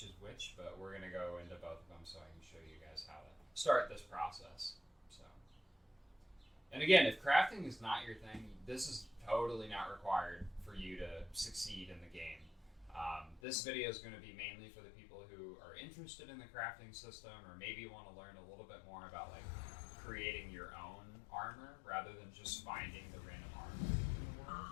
is which, but we're going to go into both of them so I can show you guys how to start this process. So, and again, if crafting is not your thing, this is totally not required for you to succeed in the game. This video is going to be mainly for the people who are interested in the crafting system, or maybe want to learn a little bit more about like creating your own armor rather than just finding the random armor in the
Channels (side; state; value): right; drops out; at 13.4 s